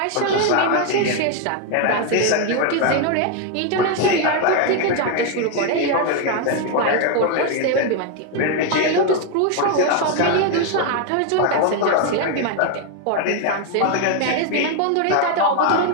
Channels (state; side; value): different; both; correlation 0.01